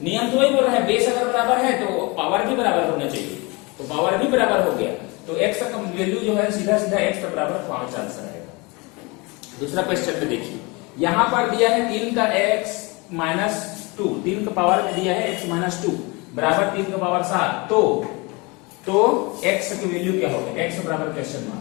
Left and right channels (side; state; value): right; quieter; 26.9 dB